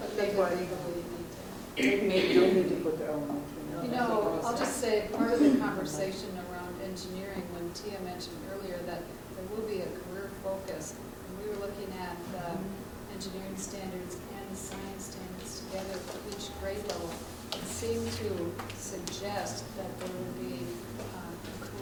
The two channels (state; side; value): identical; both; correlation 1.00